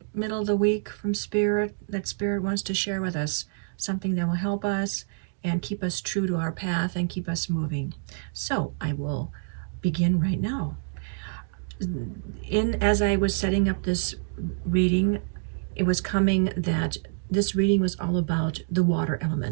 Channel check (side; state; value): left; silent; digital silence